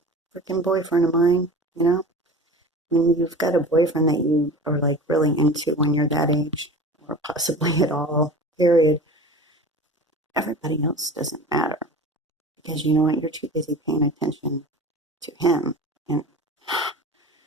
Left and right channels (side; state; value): both; normal; correlation 0.36